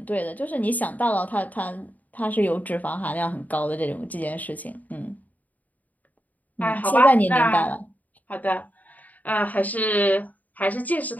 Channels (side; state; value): right; late; 0.077 ms